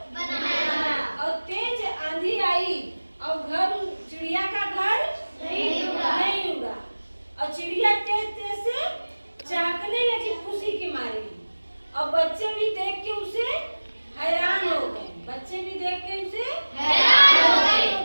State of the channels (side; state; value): both; inverted; correlation -1.00